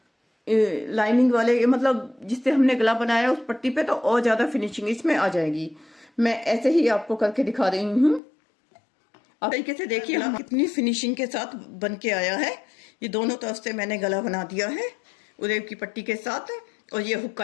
लाइनिंग वाले, मतलब जिससे हमने गला बनाया उस पट्टी पे, तो और ज़्यादा फिनिशिंग इसमें आ जाएगी। मैं ऐसे ही आपको करके दिखा रही हूँ। आप तरीके से देखिए हम कितनी फिनिशिंग के साथ बन के आया है। ये दोनों तरफ से मैंने गला बना दिया है उरेब की पट्टी के साथ। और ये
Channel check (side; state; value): right; drops out; at 8.2 s